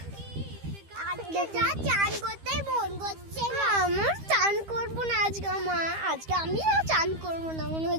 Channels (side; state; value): left; late; 13 ms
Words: আজকে যা চান করতেই মন করছে না। আমার চান করবো না আজকে, আজকে আমি চান করবো না মনে